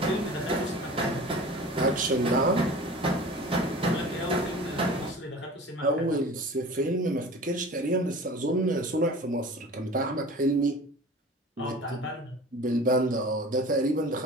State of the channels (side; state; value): both; normal; correlation 0.39